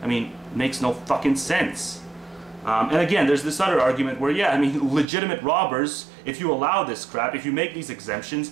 I mean, it makes no fucking sense. And again, there's this other argument where, yeah, I mean, legitimate robbers, if you allow this crap, if you make these exemptions,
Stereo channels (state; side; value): drops out; left; at 5.1 s